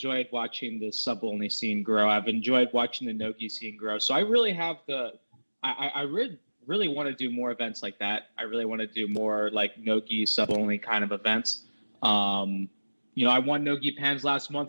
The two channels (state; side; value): inverted; both; correlation -1.00